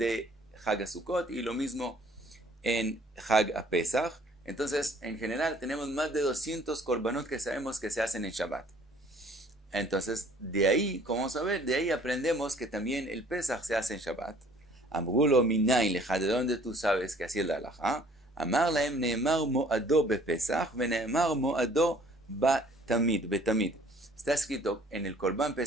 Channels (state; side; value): normal; both; correlation 0.56